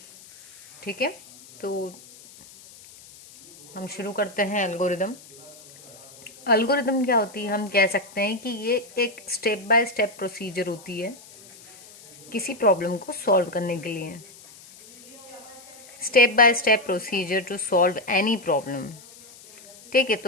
ठीक है, तो हम शुरू करते हैं। एल्गोरिदम क्या होती है? हम कह सकते हैं कि ये एक स्टेप बाय स्टेप प्रोसीजर होती है किसी प्रॉब्लम को सॉल्व करने के लिए। Step by step procedure to solve any problem. ठीक है,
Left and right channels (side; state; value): left; noise; hiss, 21 dB below the sound